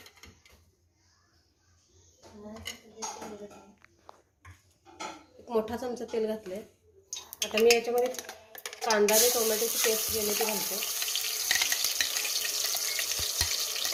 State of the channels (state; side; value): identical; both; correlation 1.00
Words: एक मोठा चमचा तेल घातले। आता मी याच्यामध्ये कांदा आणि टोमॅटोची पेस्ट केली ती घालते।